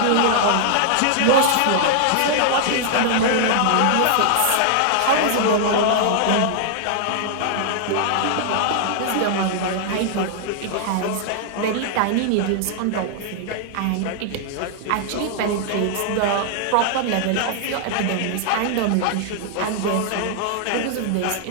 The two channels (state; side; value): different; both; correlation -0.01